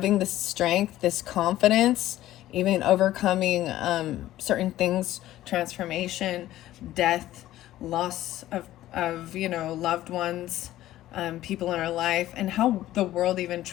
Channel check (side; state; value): right; quieter; 14.3 dB